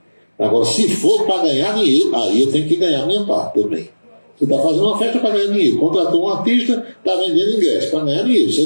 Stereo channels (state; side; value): inverted; both; correlation -1.00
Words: Agora, se for para ganhar dinheiro, aí eu tenho que ganhar minha parte também. Você está fazendo uma festa para ganhar dinheiro. Contratou um artista, está vendendo ingresso para ganhar dinheiro. Você